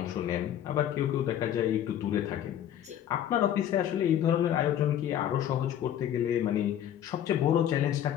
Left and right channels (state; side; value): quieter; right; 10.6 dB